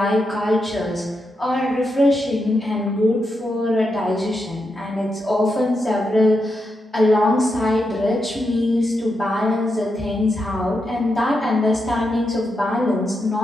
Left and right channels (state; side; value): normal; both; correlation 0.85